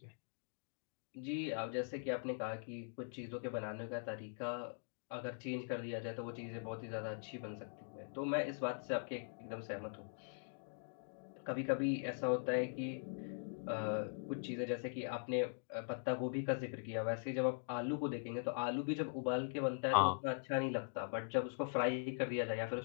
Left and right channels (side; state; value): right; silent; digital silence